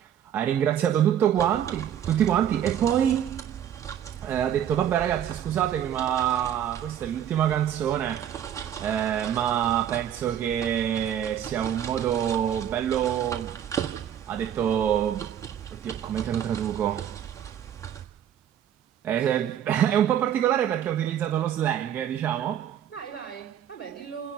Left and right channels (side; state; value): left; quieter; 10.0 dB